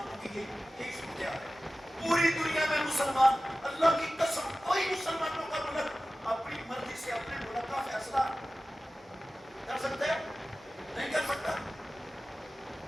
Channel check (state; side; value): normal; both; correlation 0.96